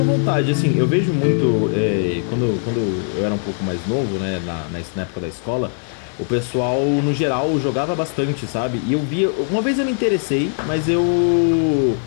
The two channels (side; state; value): right; silent; 64 dB below the other